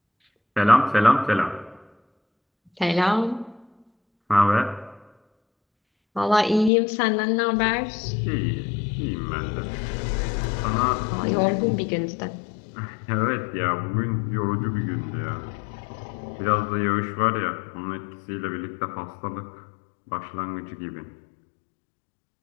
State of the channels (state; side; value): drops out; right; at 6.7 s